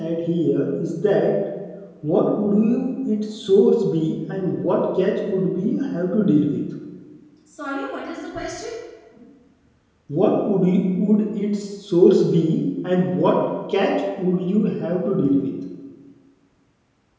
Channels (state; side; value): identical; both; correlation 1.00